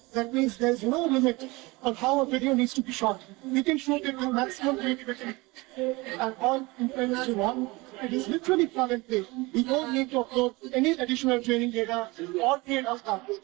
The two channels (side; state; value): left; quieter; 23.5 dB